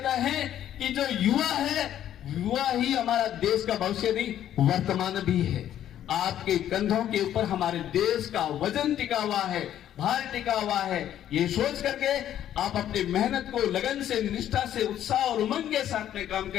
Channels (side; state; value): right; quieter; 11.2 dB